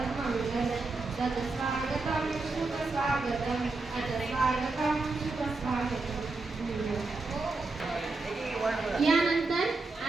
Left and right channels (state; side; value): quieter; left; 3.6 dB